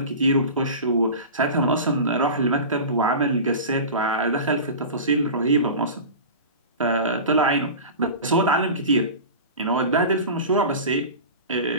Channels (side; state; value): both; inverted; correlation -0.32